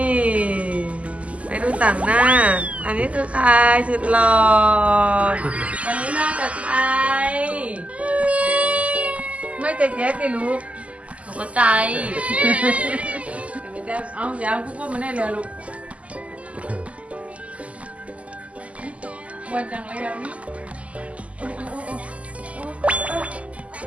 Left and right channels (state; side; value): late; left; 0.066 ms